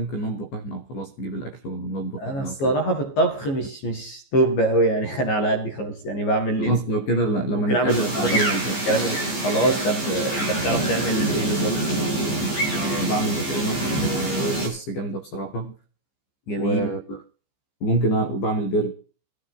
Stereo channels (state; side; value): late; right; 15 ms